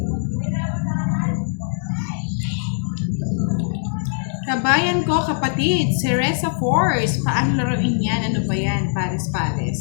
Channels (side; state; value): right; silent; 65 dB below the other